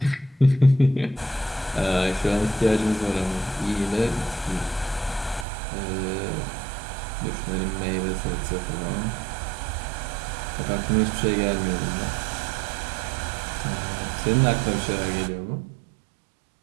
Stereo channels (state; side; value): drops out; left; at 5.5 s